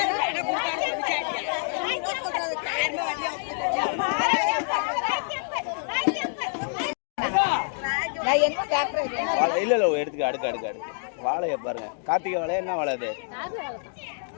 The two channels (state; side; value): silent; right; digital silence